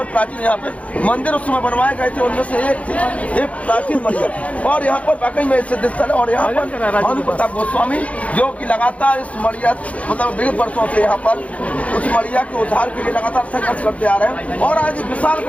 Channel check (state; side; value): late; right; 0.066 ms